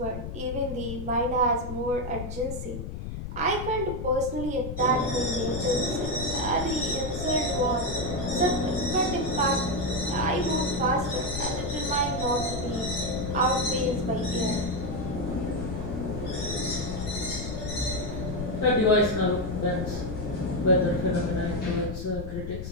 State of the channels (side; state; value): left; noise; rumble, 7 dB below the sound